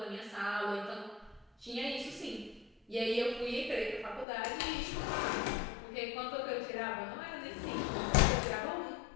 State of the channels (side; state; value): right; drops out; at 4.2 s